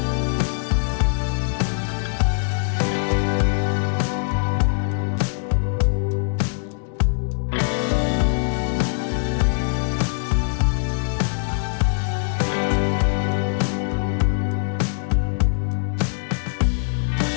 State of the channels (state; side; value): silent; right; 64 dB below the other